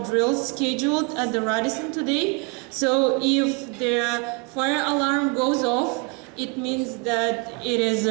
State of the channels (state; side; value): quieter; left; 31.2 dB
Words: drills scheduled at the Radisson today. So if the fire alarm goes off, it means that it is